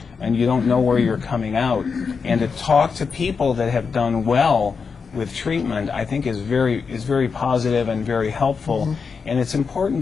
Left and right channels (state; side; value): quieter; right; 5.4 dB